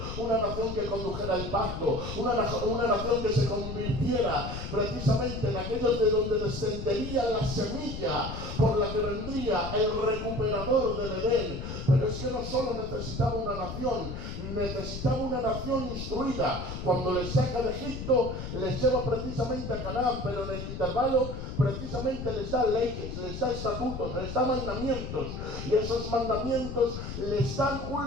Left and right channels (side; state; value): left; noise; rumble, 7 dB below the sound